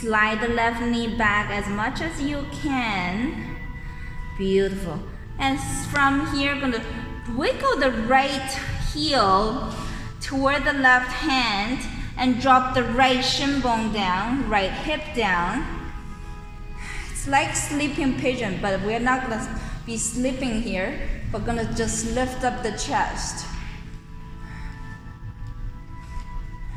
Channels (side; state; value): both; identical; correlation 1.00